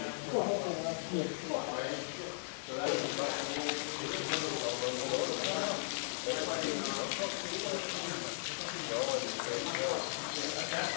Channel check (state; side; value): silent; right; digital silence